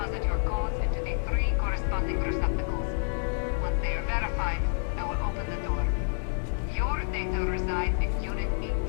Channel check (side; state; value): right; silent; digital silence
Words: your codes into the 3 corresponding receptacles. Once they are verified, I will open the door. Your data resides in Unit